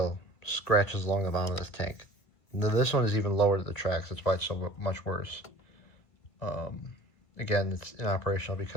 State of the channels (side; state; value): right; late; 2.0 ms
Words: scratches along the bottom of this tank. This one is even lower to the tracks. That's why it's so much worse. Again, it's inoperational